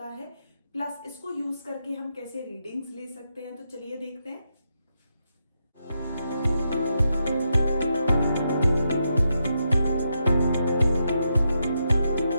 है, प्लस इसको यूज करके हम कैसे रीडिंग्स ले सकते हैं। तो चलिए देखते हैं।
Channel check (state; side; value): inverted; both; correlation -0.83